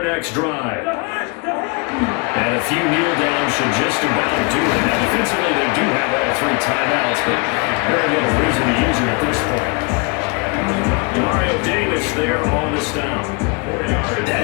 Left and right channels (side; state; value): right; quieter; 31.8 dB